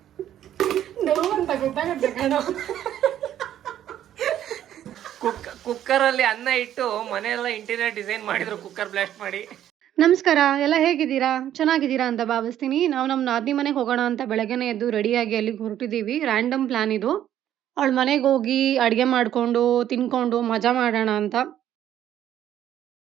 ನೋವಂತ ಗೊತ್ತಾಗುತ್ತೆ ಕಣೋ. ಕುಕ್ಕರ್ ಅಲ್ಲಿ ಅನ್ನ ಇಟ್ಟು ಮನೆಯೆಲ್ಲ ಇಂಟೀರಿಯರ್ ಡಿಸೈನ್ ಮಾಡಿದ್ರು, ಕುಕ್ಕರ್ ಬ್ಲಾಸ್ಟ್ ಮಾಡಿ. ನಮಸ್ಕಾರ, ಎಲ್ಲ ಹೇಗಿದ್ದೀರಾ? ಚೆನ್ನಾಗಿದ್ದೀರಾ ಅಂತ ಭಾವಿಸ್ತೀನಿ. ನಾವು ನಮ್ಮ ನಾದಿನಿ ಮನೆಗೆ ಹೋಗೋಣ ಅಂತ ಬೆಳಗ್ಗೆನೆ ಎದ್ದು ರೆಡಿಯಾಗಿ ಅಲ್ಲಿಗೆ ಹೊರಟಿದ್ದೀವಿ. ರ್ಯಾಂಡಮ್ ಪ್ಲಾನ್ ಇದು. ಅವಳ ಮನೆಗೆ ಹೋಗಿ ಅಡುಗೆ ಮಾಡಿಕೊಂಡು ತಿನ್ಕೊಂಡು ಮಜಾ ಮಾಡೋಣ ಅಂತ.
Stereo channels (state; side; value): quieter; left; 11.3 dB